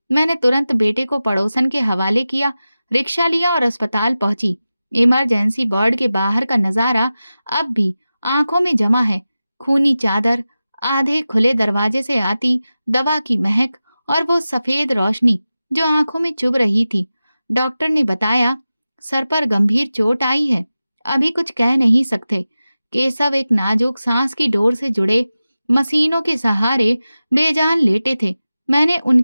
मैंने तुरंत बेटे को पड़ोसन के हवाले किया, रिक्शा लिया और अस्पताल पहुंची। इमरजेंसी वार्ड के बाहर का नजारा अब भी आंखों में जमा है। खूनी चादर, आधे खुले दरवाजे से आती दवा की महक और वो सफेद रोशनी जो आंखों में चुभ रही थी। डॉक्टर ने बताया, सर पर गंभीर चोट आई है, अभी कुछ कह नहीं सकते। केशव एक नाजुक सांस की डोर से जुड़े मशीनों के सहारे बेजान लेटे थे। मैंने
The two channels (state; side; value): inverted; both; correlation -0.94